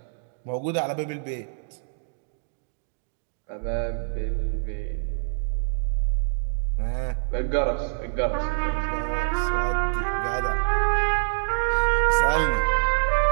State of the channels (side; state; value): left; silent; digital silence